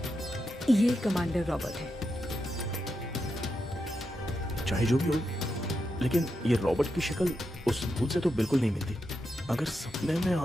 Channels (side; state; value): both; normal; correlation 0.86